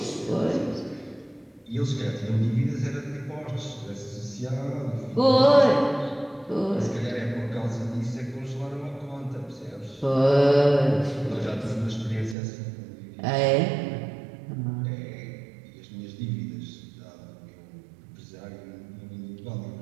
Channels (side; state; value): left; drops out; at 12.4 s